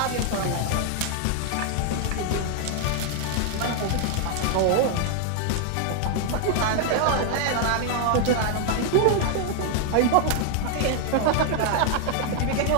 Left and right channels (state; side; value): different; both; correlation 0.00